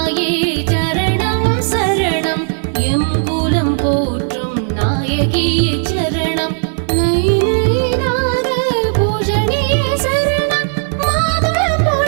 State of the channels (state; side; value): silent; left; digital silence